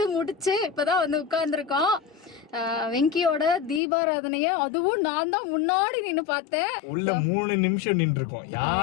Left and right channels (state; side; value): drops out; right; at 3.8 s